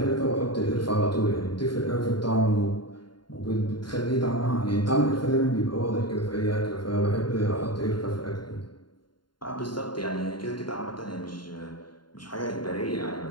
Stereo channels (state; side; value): late; right; 0.72 ms